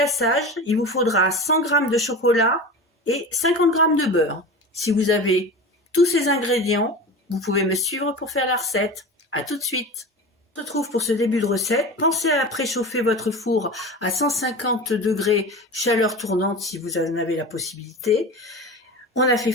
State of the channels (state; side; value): normal; both; correlation 0.30